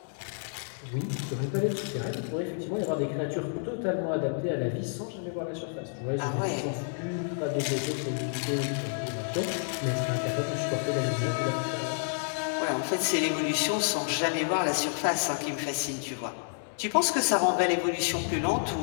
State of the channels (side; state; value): right; silent; digital silence